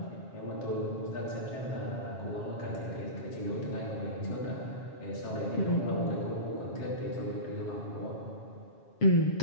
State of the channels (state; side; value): late; right; 7.3 ms